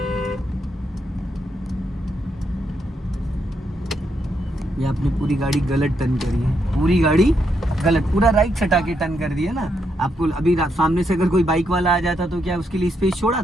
ये आपने पूरी गाड़ी गलत टर्न करी है, पूरी गाड़ी गलत, पूरा राइट सटा के टर्न कर दिया ना। आपको अभी सामने से अगर कोई बाइक वाला आ जाता तो क्या उसके लिए स्पेस छोड़ा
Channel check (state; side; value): normal; both; correlation 0.79